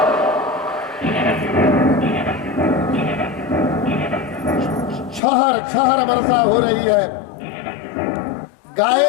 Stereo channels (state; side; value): drops out; right; at 5.2 s